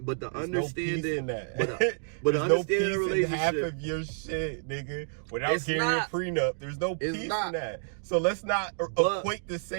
the relationship, half of your shit, nigga, without getting a prenup. There's no peace in that. So let's not equate the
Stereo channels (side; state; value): left; silent; digital silence